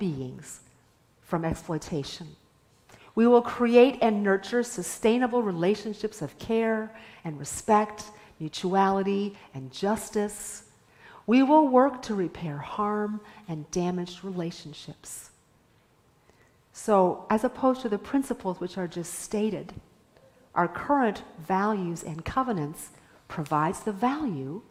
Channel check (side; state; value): both; identical; correlation 1.00